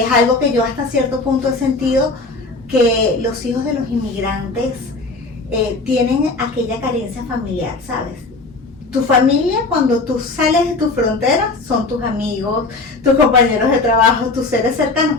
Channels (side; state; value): right; quieter; 3.5 dB